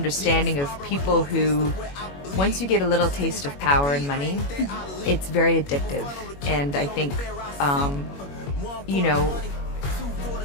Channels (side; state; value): right; late; 21 ms